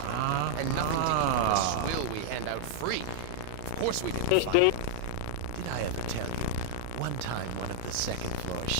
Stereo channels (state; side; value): different; both; correlation -0.01